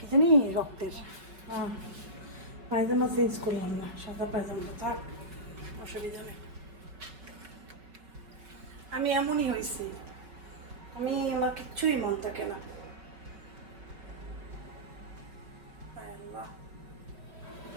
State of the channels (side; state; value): left; late; 5.3 ms